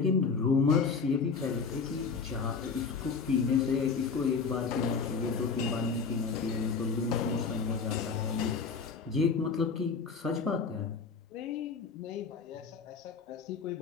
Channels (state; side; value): quieter; right; 5.2 dB